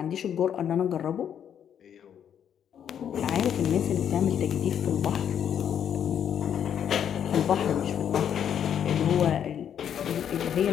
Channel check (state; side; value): quieter; right; 9.0 dB